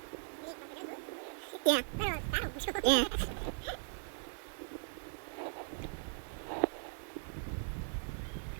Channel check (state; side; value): silent; left; digital silence